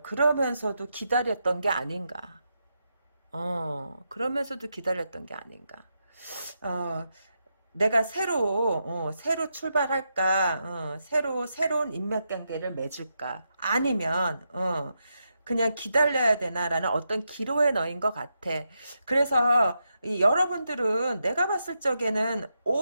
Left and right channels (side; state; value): both; inverted; correlation -0.85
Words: 그러면서도 기다렸던 게 아닌가. 그러면서도 기다렸던 게 아닌가. 어, 내가 새로 출발할까, 새로운 인맥관계를 맺을까, 아니면, 그냥 기다려야 되나라는 어떤 기로에 넣인 것 같아. 그래서, 여러분들은 내가 봤을 적에는